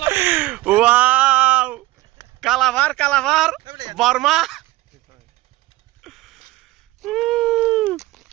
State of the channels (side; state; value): left; quieter; 18.5 dB